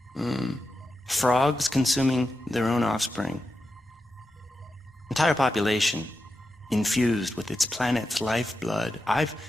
Frogs consuming their own offspring. Entire population infused with its planet's lifeblood. I've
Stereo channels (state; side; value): normal; both; correlation 0.89